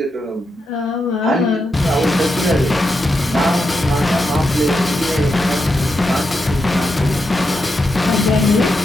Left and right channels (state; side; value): normal; both; correlation 0.85